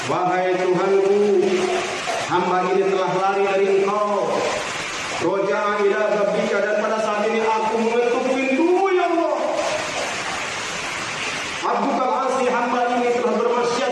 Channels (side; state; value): both; identical; correlation 1.00